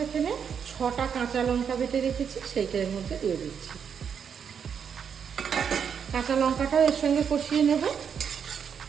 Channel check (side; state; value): left; quieter; 7.3 dB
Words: এখানে 6টা কাঁচা লঙ্কা বেটে রেখেছি, সেইটার মধ্যে দিয়ে দিচ্ছি। কাঁচা লঙ্কাটাও এর সঙ্গে কষিয়ে নেব।